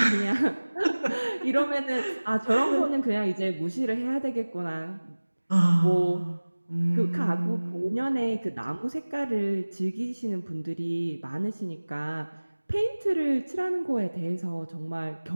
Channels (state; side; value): inverted; both; correlation -1.00